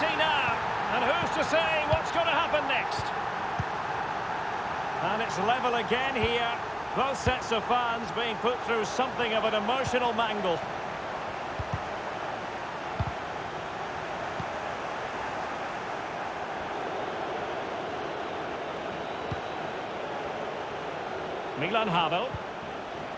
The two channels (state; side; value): identical; both; correlation 1.00